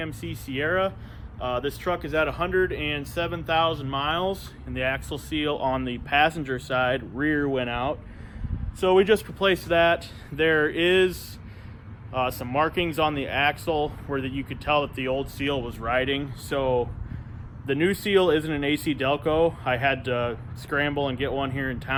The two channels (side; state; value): both; identical; correlation 1.00